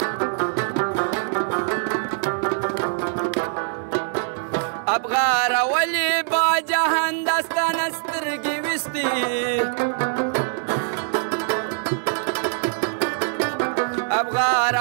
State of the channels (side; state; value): left; silent; digital silence